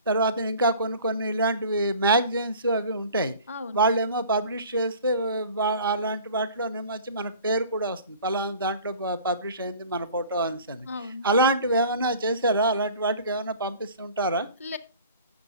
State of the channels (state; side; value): inverted; both; correlation -0.45